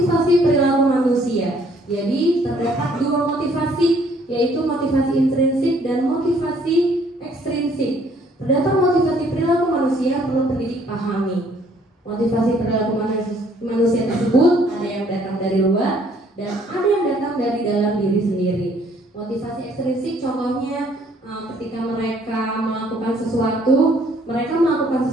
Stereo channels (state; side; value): normal; both; correlation 0.62